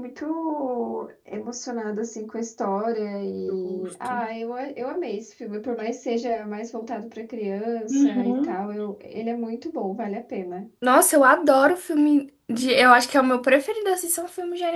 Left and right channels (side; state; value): both; identical; correlation 1.00